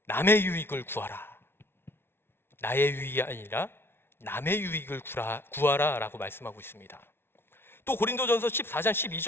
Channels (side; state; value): right; late; 0.11 ms